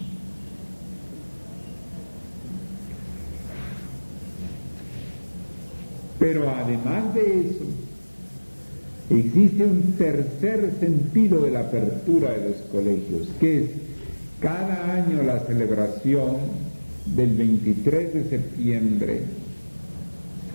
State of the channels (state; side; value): inverted; both; correlation -1.00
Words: Pero además de eso, existe un tercer sentido de la apertura de los colegios, que es cada año la celebración del 23 de septiembre,